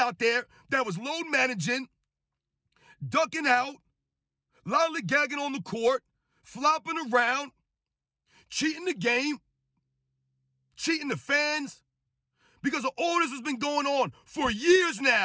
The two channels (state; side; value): identical; both; correlation 1.00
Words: there that was load managing, ducking out, lollygagging on the court, flopping around, cheating the game, cheating the fans, because all this has been going on for years